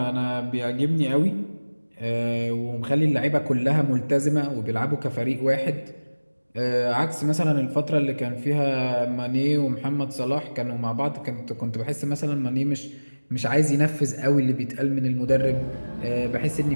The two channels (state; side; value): inverted; both; correlation -1.00